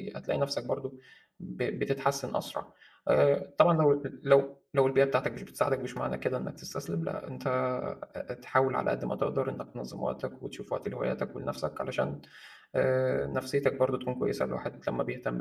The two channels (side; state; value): both; identical; correlation 1.00